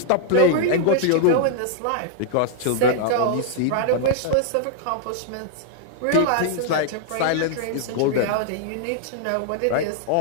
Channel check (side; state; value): both; different; correlation -0.01